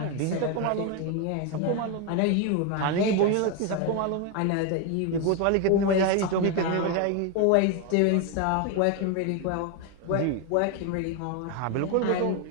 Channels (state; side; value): different; both; correlation 0.01